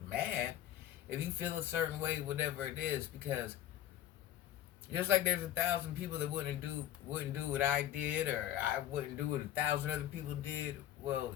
mad if you feel a certain way, whatever it is, because just like there's 1,000 people that wouldn't do what I did, or I wouldn't do what 1,000 other people did.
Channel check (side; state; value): right; quieter; 12.0 dB